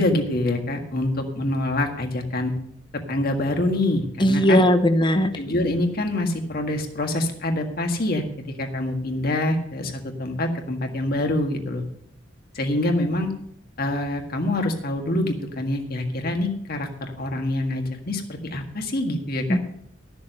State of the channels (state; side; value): normal; both; correlation 0.62